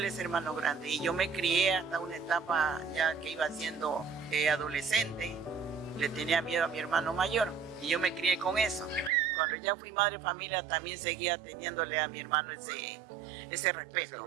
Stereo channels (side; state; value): left; drops out; at 9.1 s